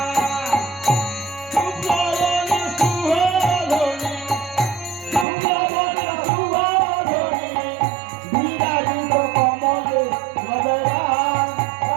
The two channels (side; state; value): left; drops out; at 5.2 s